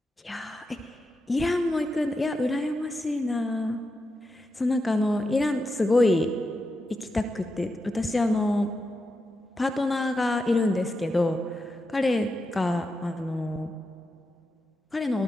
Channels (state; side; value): normal; both; correlation 0.87